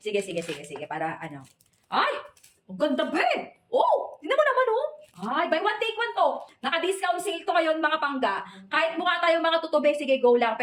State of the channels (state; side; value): identical; both; correlation 1.00